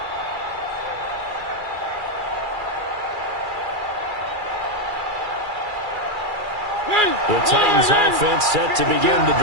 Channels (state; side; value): late; left; 2.4 ms